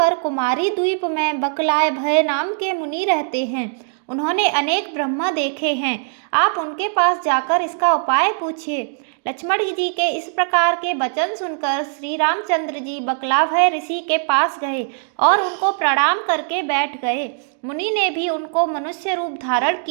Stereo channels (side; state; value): left; silent; digital silence